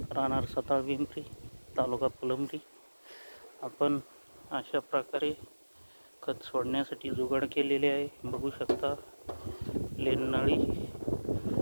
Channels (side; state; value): both; inverted; correlation -1.00